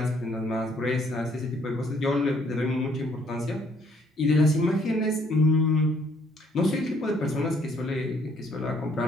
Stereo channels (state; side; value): normal; both; correlation 0.65